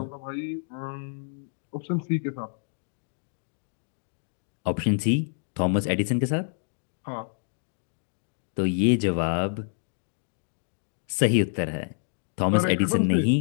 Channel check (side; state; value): right; silent; digital silence